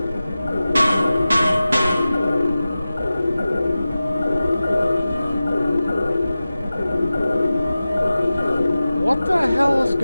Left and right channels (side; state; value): both; inverted; correlation -0.96